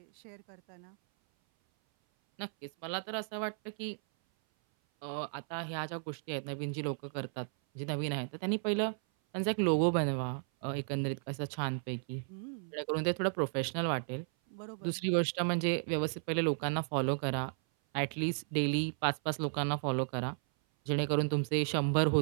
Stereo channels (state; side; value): silent; left; 55 dB below the other